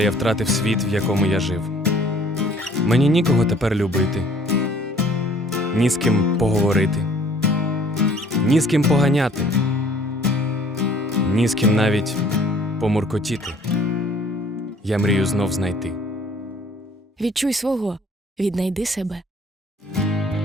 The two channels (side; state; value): both; normal; correlation 0.56